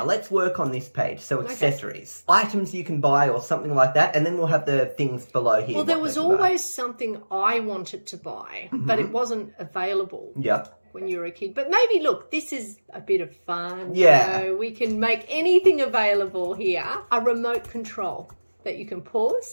let's work on this page. So accessories, items you can buy or something like that. And then we'll have the things below here. Well, there was always something I wanted to buy, but it wasn't available. Yeah. When you were a kid. But maybe, look, this is a bit of fun. Yeah. You know, we can make anything available here. A remote control that you can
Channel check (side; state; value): both; inverted; correlation -1.00